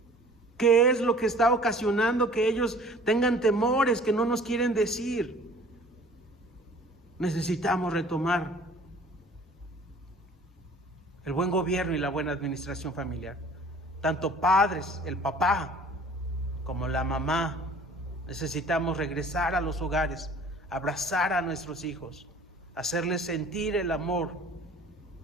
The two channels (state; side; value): normal; both; correlation 0.49